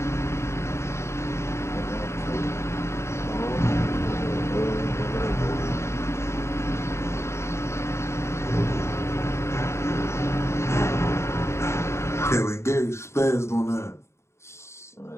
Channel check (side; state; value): right; late; 0.13 ms